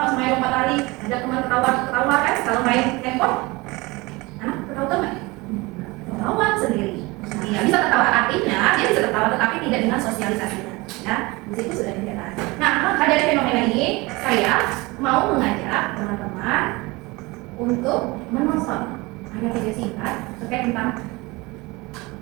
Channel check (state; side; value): quieter; left; 23.4 dB